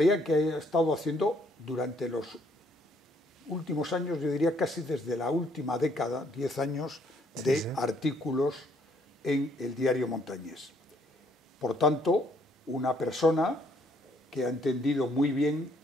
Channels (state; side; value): normal; both; correlation 0.67